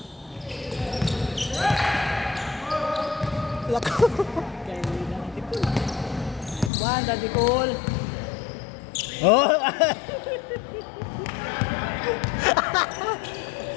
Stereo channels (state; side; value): drops out; right; at 6.7 s